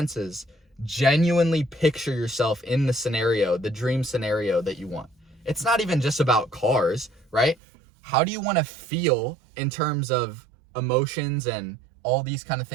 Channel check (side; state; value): left; drops out; at 7.6 s